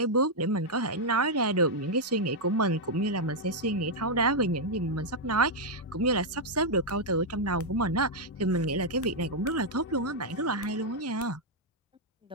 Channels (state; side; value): normal; both; correlation -0.03